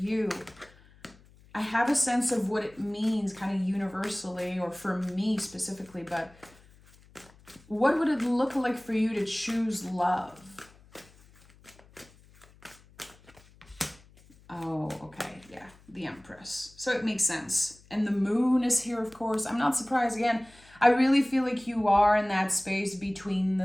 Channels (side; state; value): left; noise; hum, 26 dB below the sound